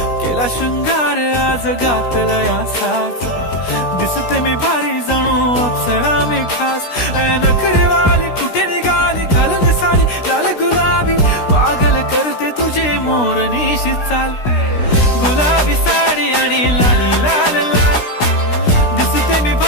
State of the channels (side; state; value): right; late; 16 ms